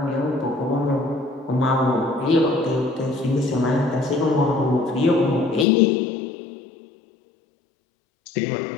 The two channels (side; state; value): right; drops out; at 5.7 s